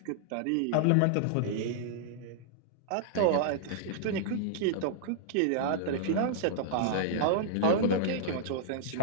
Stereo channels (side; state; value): both; different; correlation -0.01